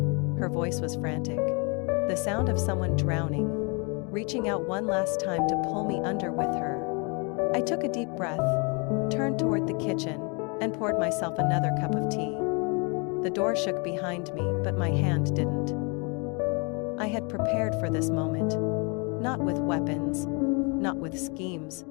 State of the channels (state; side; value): quieter; right; 32.8 dB